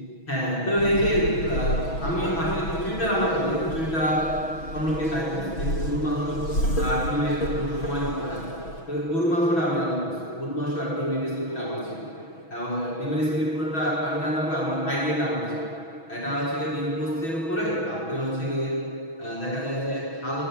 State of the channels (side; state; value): right; late; 6.2 ms